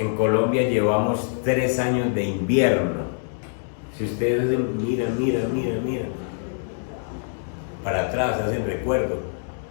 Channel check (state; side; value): silent; right; digital silence